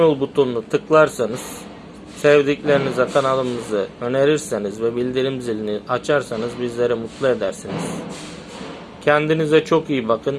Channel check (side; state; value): both; identical; correlation 1.00